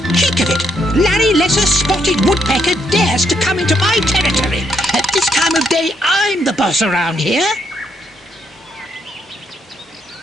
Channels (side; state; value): both; normal; correlation 0.75